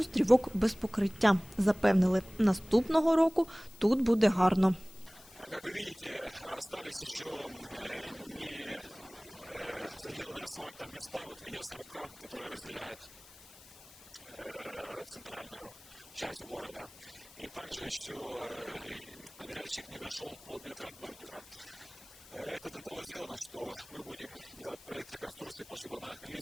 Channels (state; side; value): noise; left; hiss, 21 dB below the sound